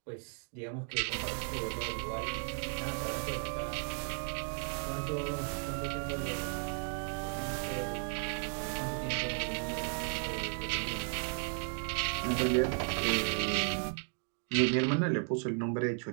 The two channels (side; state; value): left; silent; 54 dB below the other